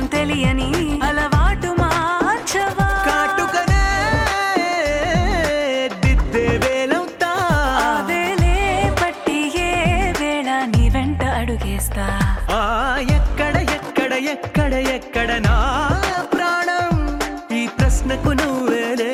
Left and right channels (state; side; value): identical; both; correlation 1.00